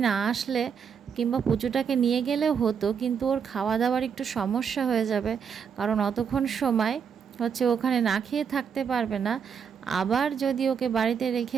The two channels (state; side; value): quieter; left; 7.0 dB